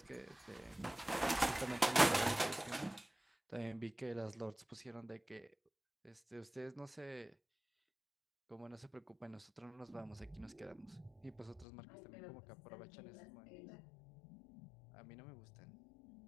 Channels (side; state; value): right; drops out; at 11.7 s